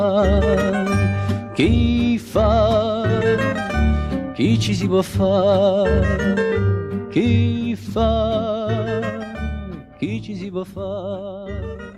chi fa, chi ci si può fare, chi fa, chi ci si può fare,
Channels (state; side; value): identical; both; correlation 1.00